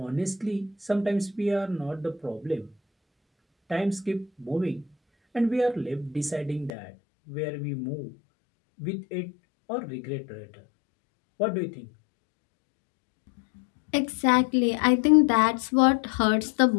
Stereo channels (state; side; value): drops out; right; at 6.7 s